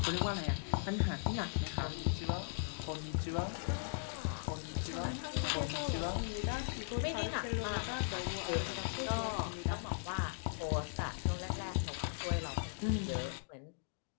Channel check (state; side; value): silent; right; digital silence